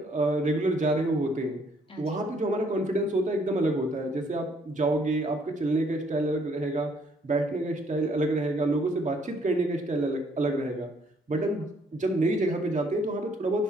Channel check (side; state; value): both; normal; correlation 0.66